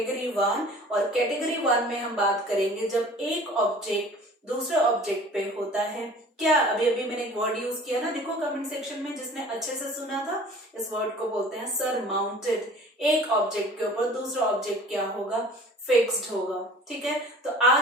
1, और कैटेगरी 1 में हम बात करेंगे जब एक ऑब्जेक्ट दूसरे ऑब्जेक्ट पे होता है। क्या अभी मैंने एक वर्ड यूज किया ना, देखो कमेंट सेक्शन में जिसने अच्छे से सुना था, इस वर्ड को बोलते हैं सरमाउंटेड। एक ऑब्जेक्ट के ऊपर दूसरा ऑब्जेक्ट क्या होगा, फिक्स्ड होगा, ठीक है। तो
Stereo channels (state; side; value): normal; both; correlation 0.46